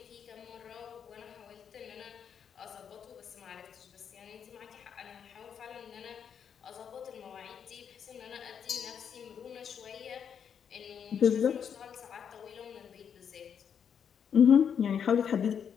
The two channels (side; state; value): right; quieter; 7.7 dB